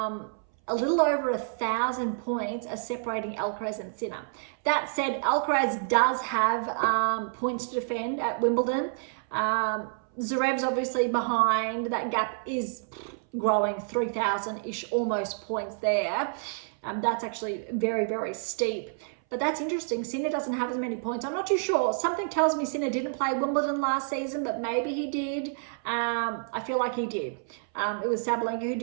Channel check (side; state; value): left; silent; 59 dB below the other